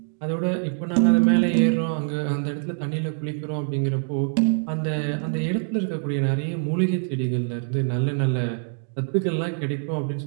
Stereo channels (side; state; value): left; silent; 61 dB below the other